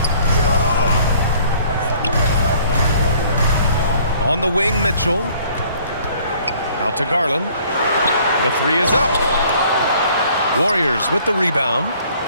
On the wing, Mitchell. Out to Garland. The three is up. Warriors with the rebound.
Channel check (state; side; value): inverted; both; correlation -0.57